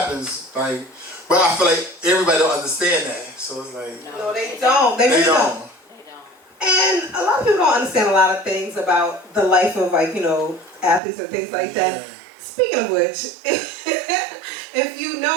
like, but I feel like everybody don't understand that, so it's like. No, they don't. They really don't. And a lot of people don't understand a lot of things about the life of, like, athletes and things like that. Speaking of which, if you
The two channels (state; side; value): drops out; left; at 11.0 s